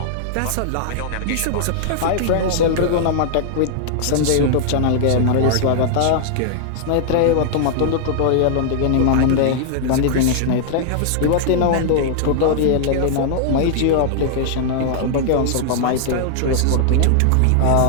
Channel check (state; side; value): different; both; correlation -0.01